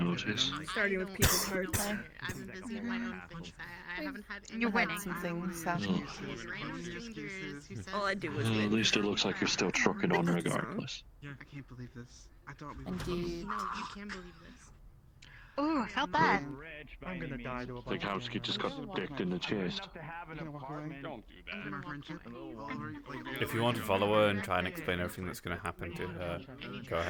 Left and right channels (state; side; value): identical; both; correlation 1.00